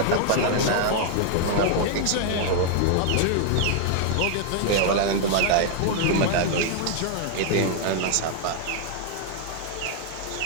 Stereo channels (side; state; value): both; different; correlation 0.00